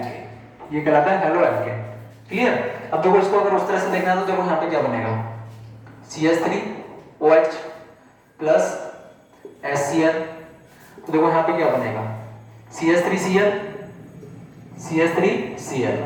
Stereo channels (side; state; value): both; identical; correlation 1.00